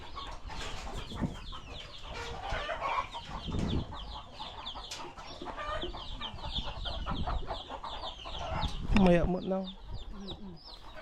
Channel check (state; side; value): identical; both; correlation 1.00